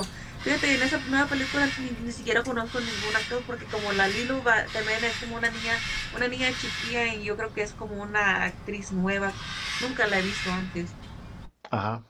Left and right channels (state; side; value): identical; both; correlation 1.00